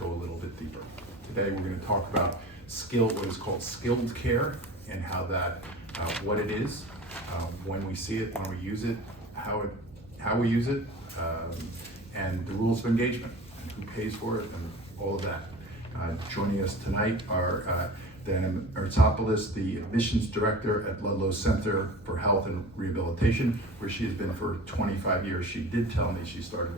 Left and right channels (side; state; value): both; normal; correlation 0.38